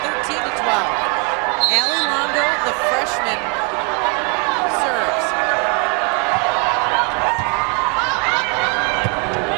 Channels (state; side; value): quieter; left; 32.7 dB